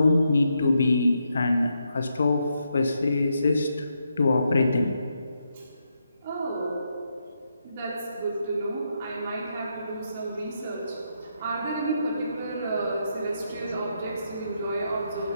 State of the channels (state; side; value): inverted; both; correlation -0.81